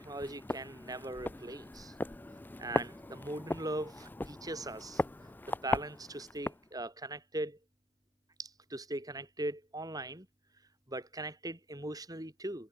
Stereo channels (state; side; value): normal; both; correlation 0.67